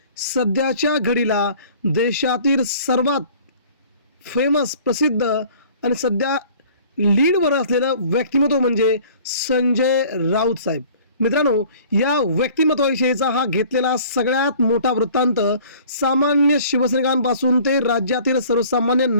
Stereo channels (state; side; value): inverted; both; correlation -0.50